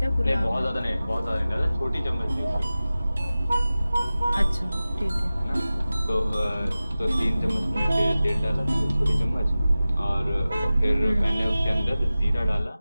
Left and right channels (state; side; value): inverted; both; correlation -0.96